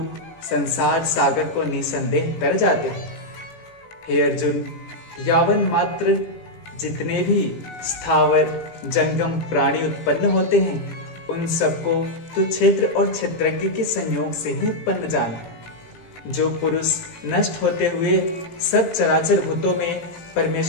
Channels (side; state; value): right; late; 18 ms